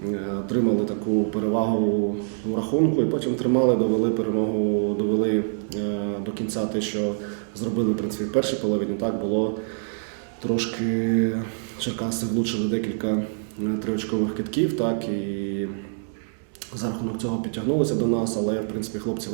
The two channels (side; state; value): left; silent; digital silence